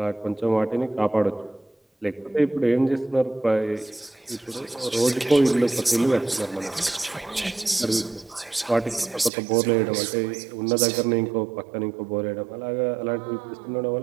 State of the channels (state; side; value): drops out; left; at 9.3 s